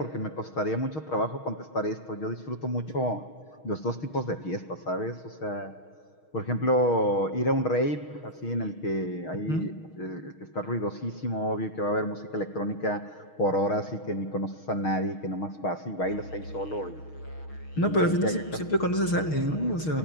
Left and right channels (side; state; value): right; late; 6.4 ms